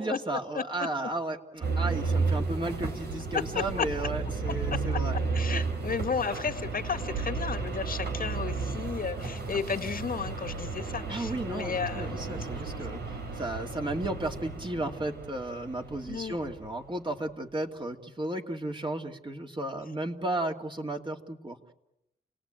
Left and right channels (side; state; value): both; normal; correlation 0.53